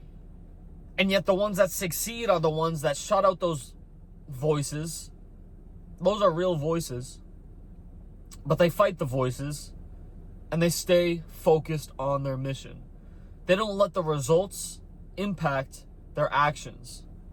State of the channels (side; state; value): both; identical; correlation 1.00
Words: And yet the ones that succeed are the ones that shut out those voices. Those are real voices. But they fight the voices and they stay focused on their mission. They don't let the results impact their actions.